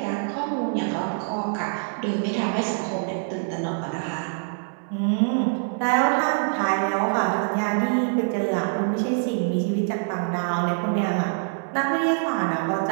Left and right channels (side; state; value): left; silent; 62 dB below the other